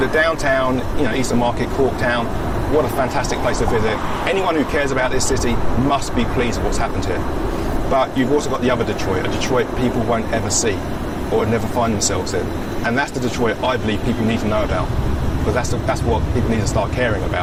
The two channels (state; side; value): identical; both; correlation 1.00